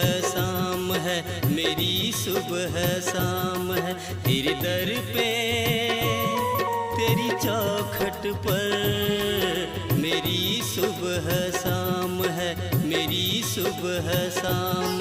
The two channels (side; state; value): both; identical; correlation 1.00